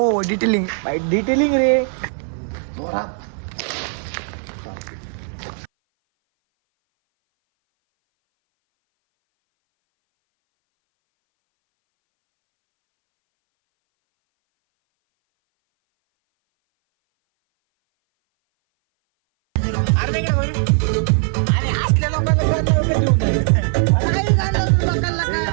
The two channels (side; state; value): left; silent; 59 dB below the other